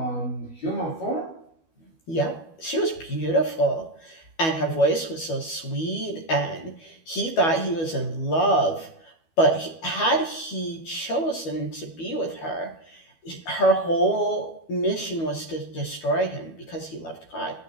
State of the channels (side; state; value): right; late; 12 ms